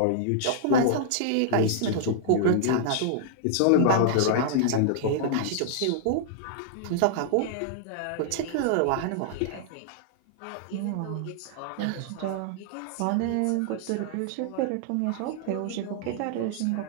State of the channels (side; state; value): both; different; correlation -0.01